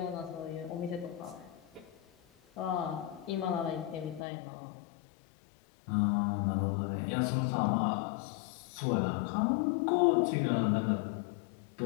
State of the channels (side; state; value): right; drops out; at 4.2 s